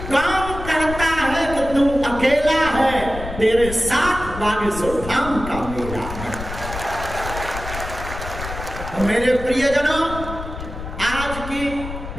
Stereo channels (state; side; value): noise; left; rumble, 9 dB below the sound